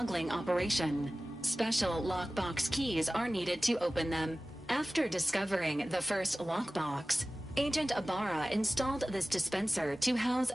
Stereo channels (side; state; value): both; normal; correlation 0.97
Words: operation. Special lockbox keys are needed to open them. After discovering the first lockbox, Agent Ibarra installed this dispenser to house